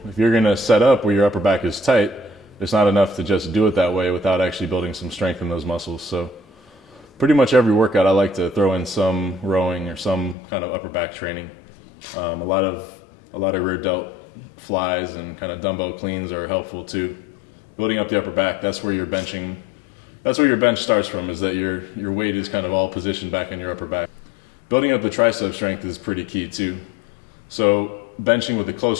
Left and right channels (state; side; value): drops out; right; at 10.4 s